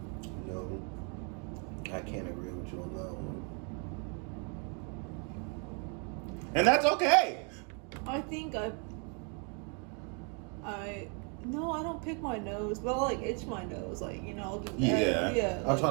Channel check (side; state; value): left; quieter; 37.9 dB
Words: No, I can't agree with you on that one. And that's okay. I think no, I don't pick my nose, but I like itch my nose, like, you know, I'll do that. Yeah. I'll try